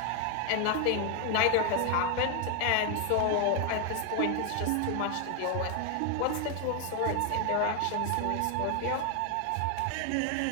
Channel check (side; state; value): both; different; correlation 0.01